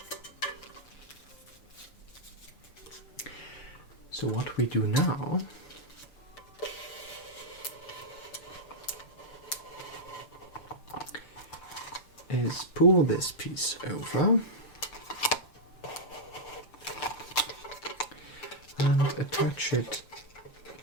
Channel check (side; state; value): right; late; 6.8 ms